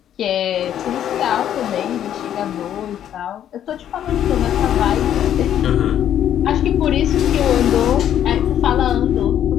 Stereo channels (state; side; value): quieter; right; 10.4 dB